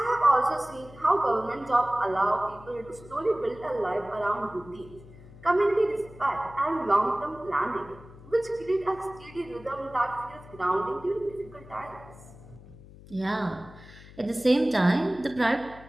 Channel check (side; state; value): left; noise; hum, 19 dB below the sound